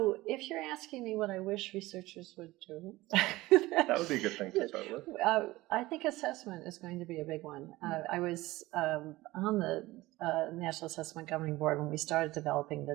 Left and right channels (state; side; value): quieter; left; 18.8 dB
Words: if you're asking me what I wish researchers would do, that would be a good thing to start with. I think assessment is going to be a big one. I was on the National Assessment Governing Board when we started developing